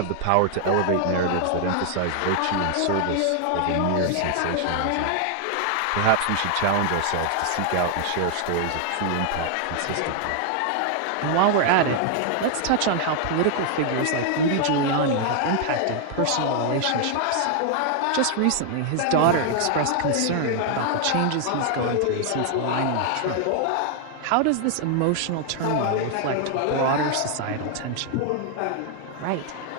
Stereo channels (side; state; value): both; different; correlation 0.00